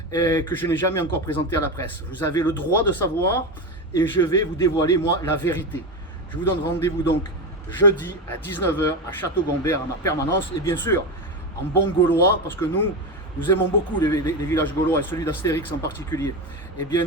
que je n'ai jamais encore présenté à la presse. Vous avez le droit de savoir et je vais vous dévoiler, moi, la vérité. Je vous donne rendez-vous donc jeudi à 19h à Château-Gombert, à ma permanence, et bien sûr, en bon gaulois, parce que nous aimons beaucoup les villages gaulois, et celui d'Astérix en particulier. Eh bien,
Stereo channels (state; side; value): normal; both; correlation 0.17